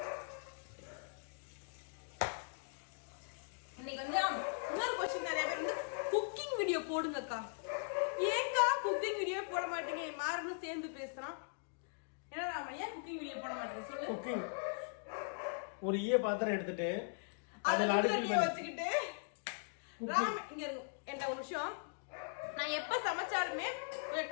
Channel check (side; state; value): right; silent; digital silence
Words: இன்னைக்கு வந்து இன்னொரு கொஸ்டின் நிறைய பேர் வந்து குக்கிங் வீடியோ போடுங்கக்கா. ஏன்க்கா குக்கிங் வீடியோ போட மாட்டீங்க? மாறனும் சேர்ந்து பேசுறான். ஏன்னா நாம ஏன் குக்கிங் வீடியோ போட மாட்டேன் சொல்லு. குக்கிங் ஒரு பாத்திரம் எடுத்துட்டு அதுல அடுப்புல வச்சுக்கிட்டு ராம் இங்க இருக்கு. என்ன ஒரு விஷயம், நான் எப்ப சமைச்சாலுமே கொஞ்சம்